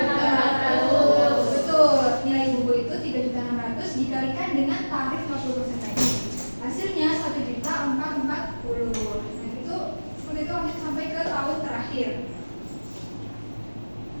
Betul, nilai buku itu 3.600.000 dikalikan dengan tarif 50% tadi. Hasilnya 1.440.000. Nah itu seperti itu lanjut sampai ke tahun terakhir.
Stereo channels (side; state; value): both; inverted; correlation -1.00